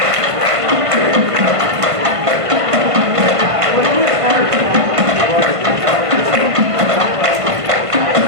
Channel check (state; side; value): late; left; 1.5 ms